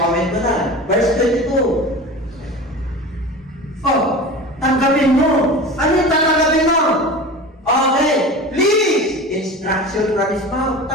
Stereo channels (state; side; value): normal; both; correlation 0.33